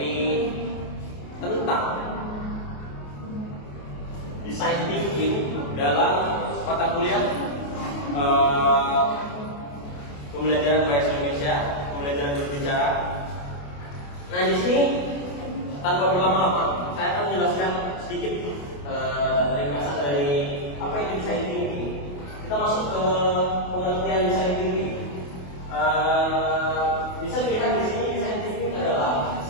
tentang design thinking dalam mata kuliah pembelajaran bahasa Indonesia, pembelajaran berbicara. Nah, di sini tanpa berlama-lama, saya akan menjelaskan sedikit ringkasan dari apa itu design thinking. Kita masuk ke pengertian design thinking. Bisa dilihat di sini design thinking adalah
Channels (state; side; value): late; right; 28 ms